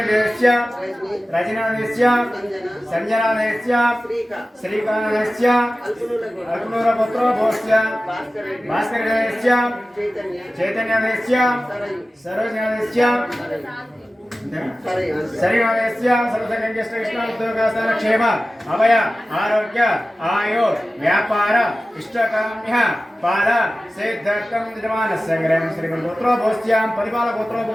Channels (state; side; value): normal; both; correlation 0.95